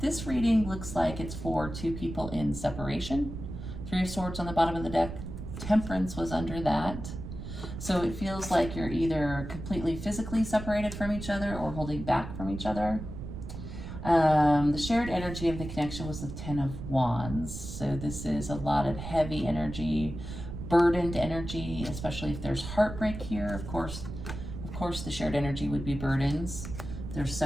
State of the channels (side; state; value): right; noise; rumble, 9 dB below the sound